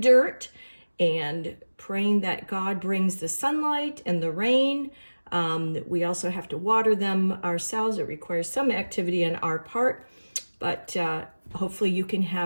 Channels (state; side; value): inverted; both; correlation -1.00